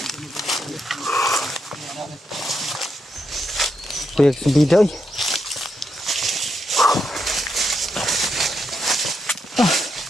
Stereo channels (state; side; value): normal; both; correlation 0.82